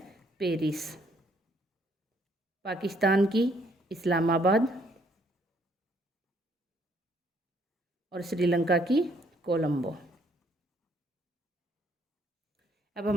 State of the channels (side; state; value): both; normal; correlation 0.67